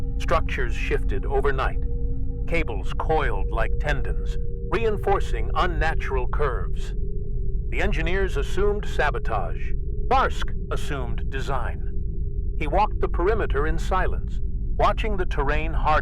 Structures shifted overnight. Cables coiled like tendons, reinforcing unnatural curves. The engineers assumed sabotage. Tharsk assumed design. He walked the perimeter in silence, watching the terrain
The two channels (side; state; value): both; identical; correlation 1.00